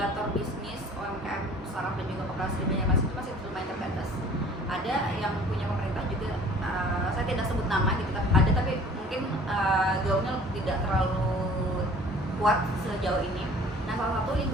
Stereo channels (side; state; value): both; normal; correlation 0.50